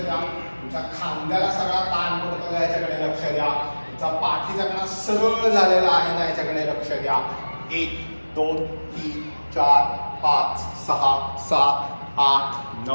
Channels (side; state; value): both; inverted; correlation -1.00